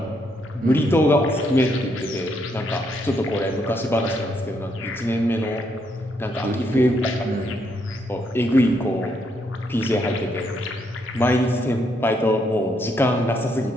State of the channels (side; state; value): both; normal; correlation 0.75